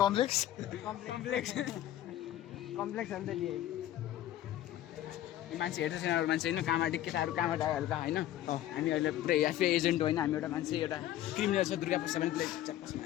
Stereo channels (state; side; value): quieter; right; 13.2 dB